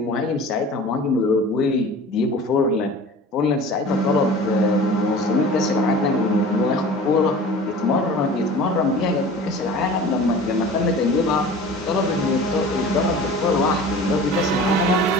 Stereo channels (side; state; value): both; normal; correlation 0.40